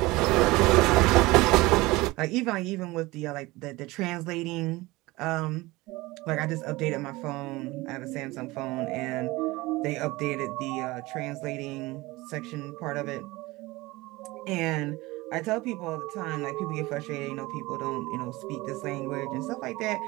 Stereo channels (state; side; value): quieter; left; 20.9 dB